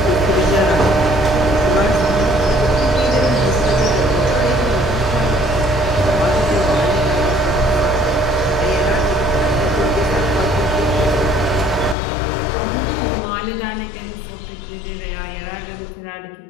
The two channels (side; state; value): right; drops out; at 12.0 s